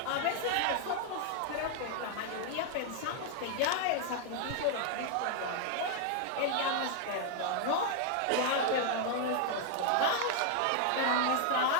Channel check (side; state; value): both; different; correlation 0.00